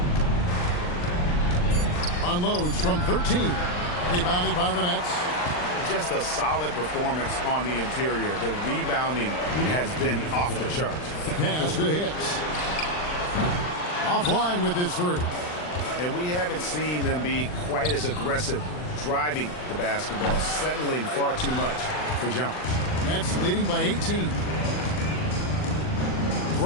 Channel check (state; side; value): late; right; 39 ms